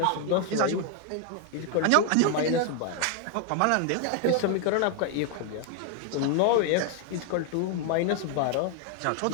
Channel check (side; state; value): both; different; correlation 0.00